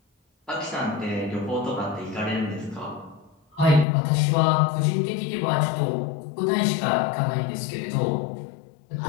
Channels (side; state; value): right; drops out; at 3.9 s